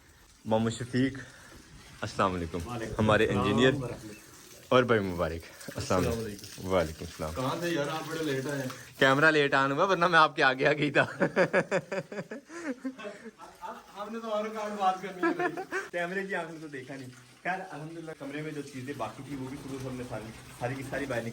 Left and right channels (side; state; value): both; identical; correlation 1.00